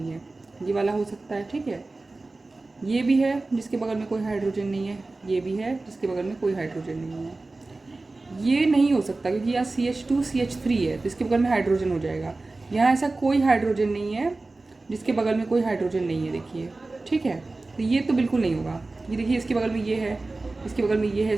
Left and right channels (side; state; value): left; quieter; 3.3 dB